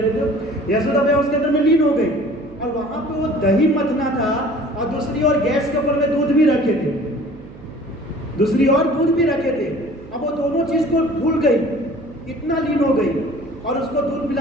रहे थे। यशोदा मैया उसके अंदर में लीन हो गई और वहां पे वो दही मथना था और दूसरी ओर गैस के ऊपर में दूध भी रखे थे, दूसरी ओर दूध भी रखे थे। अब वो दोनों चीज को भूल गई, इतना लीन हो गई और उसको दूध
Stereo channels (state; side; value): noise; right; hum, 19 dB below the sound